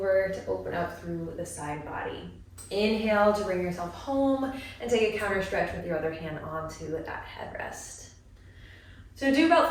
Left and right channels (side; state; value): both; identical; correlation 1.00